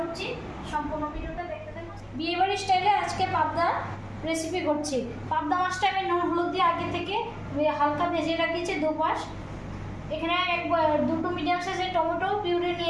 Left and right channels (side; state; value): both; identical; correlation 1.00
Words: সম্পূর্ণ ভিডিওটা দেখতে থাকুন। বিয়েবাড়ির স্টাইলে আজকে পাবদা রেসিপি করছি। পাবদা মাছটা আমি নুন হলুদ দিয়ে আগে থেকে হালকা ভেজে রাখিয়েছি দুপাশ। এখানে দুটো মিডিয়াম সাইজের টমেটো পিউরি